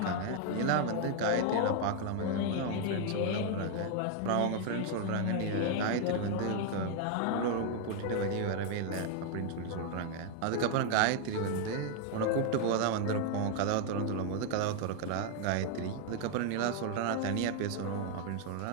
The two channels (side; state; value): both; different; correlation 0.00